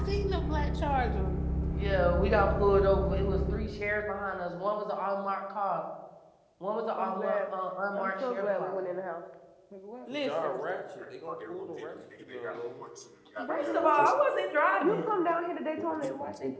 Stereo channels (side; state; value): both; identical; correlation 1.00